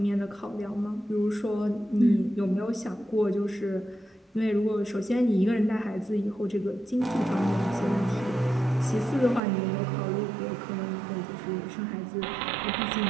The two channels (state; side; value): drops out; left; at 9.4 s